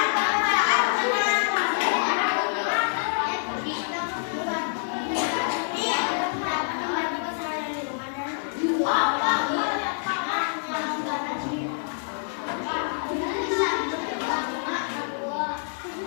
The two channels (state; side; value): silent; right; digital silence